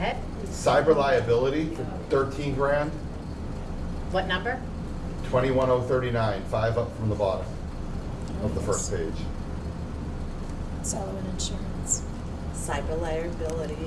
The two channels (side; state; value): both; identical; correlation 1.00